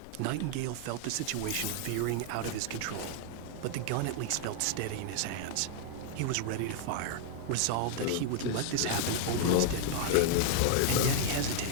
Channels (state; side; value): different; both; correlation 0.00